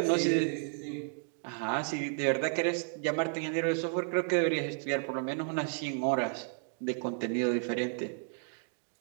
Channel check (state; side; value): silent; left; 56 dB below the other